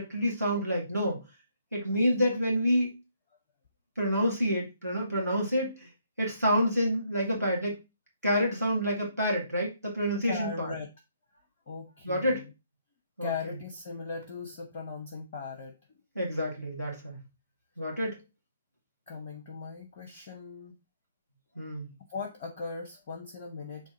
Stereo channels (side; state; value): both; inverted; correlation -0.71